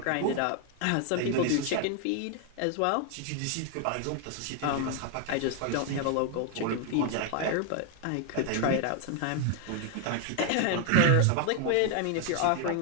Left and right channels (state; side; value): different; both; correlation 0.00